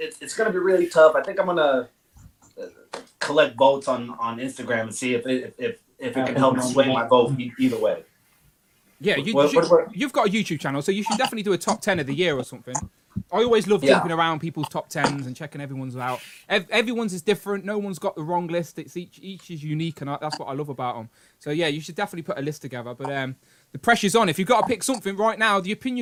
gonna be really tough. I think I'm gonna collect votes on Instagram and see if it can help sway my vote either way. Yeah, you've got a YouTube channel, so you should definitely do a top 10 of the year or something. I always love jumping around people's top 10s and checking everyone's out. Everyone's is different. No one's got the wrong list. It's each is unique, and that's what I love about them. So yeah, you should definitely put a list together. But the pressure's on. If you've got to pick something right now, the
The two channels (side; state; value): both; identical; correlation 1.00